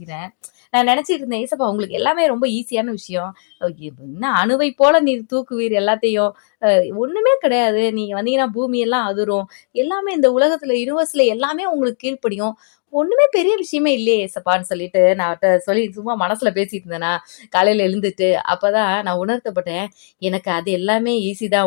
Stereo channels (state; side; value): silent; right; digital silence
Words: நான் நினைச்சிட்டு இருந்தேன், ஏசப்பா உங்களுக்கு எல்லாமே ரொம்ப ஈஸியான விஷயம், என்ன அணுவை போல நீர் தூக்குவீர் எல்லாத்தையும், ஒண்ணுமே கிடையாது, நீங்க வந்தீங்கன்னா பூமி எல்லாம் அதிரும், எல்லாமே இந்த உலகத்துல யூனிவர்ஸ்ல எல்லாமே உங்களுக்கு கீழ்ப்படியும், ஒண்ணுமே பெரிய விஷயமே இல்லையே ஏசப்பான்னு சொல்லிட்டு நான் சொல்லி சும்மா மனசுல பேசிட்டு இருந்தேனா. காலையில எழுந்துட்டு அப்பதான் நான் உணர்த்தப்பட்டேன், எனக்கு அது எல்லாமே ஈஸி